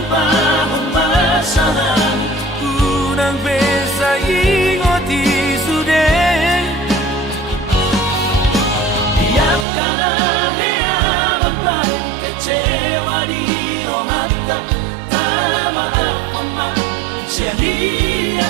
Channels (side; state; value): left; drops out; at 9.7 s